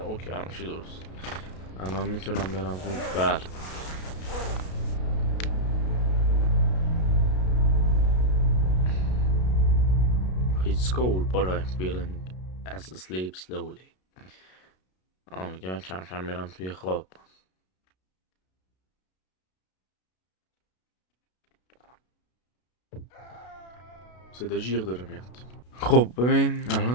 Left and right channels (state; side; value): late; right; 32 ms